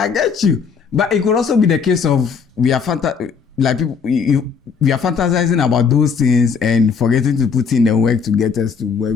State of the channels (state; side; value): quieter; right; 6.0 dB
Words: get you. But it could also be the case of we are we are fantasizing about those things and forgetting to put in the work to get us to where